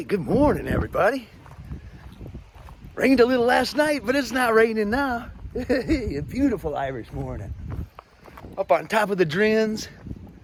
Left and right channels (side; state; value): both; identical; correlation 1.00